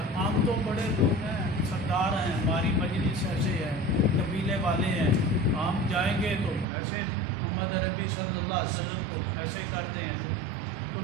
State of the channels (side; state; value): left; drops out; at 6.7 s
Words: ہم تو بڑے لوگ ہیں، سردار ہیں، ہماری مجلس ایسے ہے، قبیلے والے ہیں، ہم جائیں گے تو ایسے محمد عربی صلی اللہ علیہ وسلم کو ایسے کر دیں ایسے۔ تو